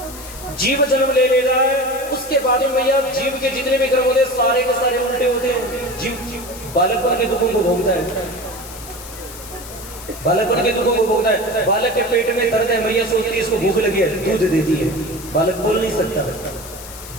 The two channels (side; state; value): left; noise; hiss, 14 dB below the sound